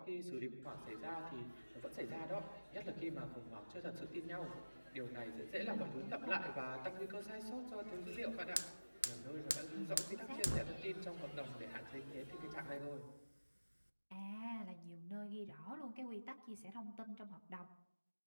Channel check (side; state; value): both; inverted; correlation -1.00